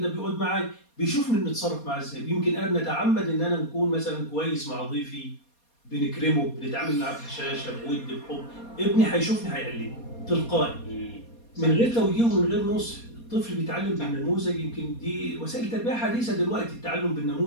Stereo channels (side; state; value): right; late; 4.2 ms